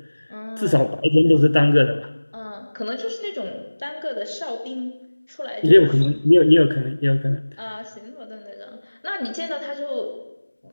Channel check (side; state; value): both; inverted; correlation -1.00